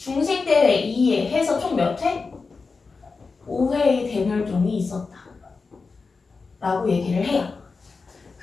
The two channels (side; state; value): right; quieter; 4.4 dB